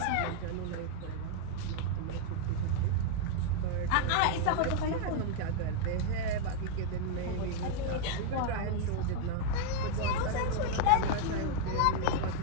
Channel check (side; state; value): both; different; correlation 0.00